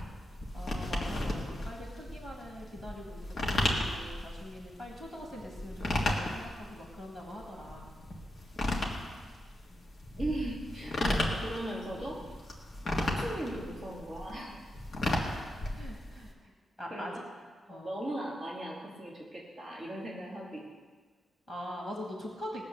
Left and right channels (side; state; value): both; normal; correlation 0.86